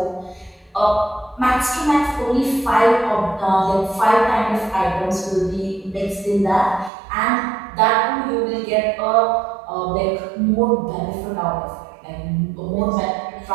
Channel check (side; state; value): left; drops out; at 6.9 s